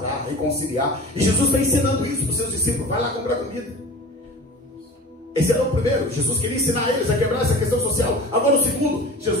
reconciliar. E Jesus está ensinando isso para os seus discípulos: vai lá comprar comida. Esse era o primeiro. Jesus queria ensinar eles a quebrar essa questão social. Agora o segundo,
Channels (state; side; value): normal; both; correlation 0.37